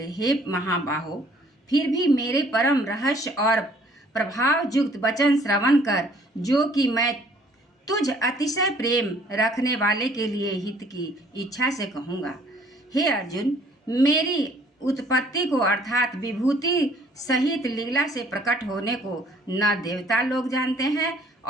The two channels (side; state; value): both; normal; correlation 0.58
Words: हे महाबाहो, फिर भी मेरे परम रहस्य और प्रभाव युक्त वचन श्रवण कर, जो कि मैं तुझ अतिशय प्रेम रखने वाले के लिए हित की इच्छा से कहूँगा। हे अर्जुन, मेरी उत्पत्ति को अर्थात विभूति सहित लीला से प्रकट होने को न देवता लोग जानते हैं